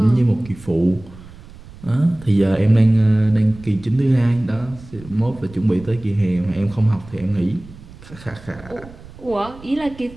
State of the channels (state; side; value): noise; right; rumble, 19 dB below the sound